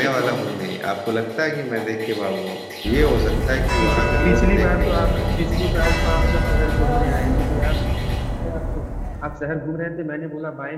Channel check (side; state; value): both; identical; correlation 1.00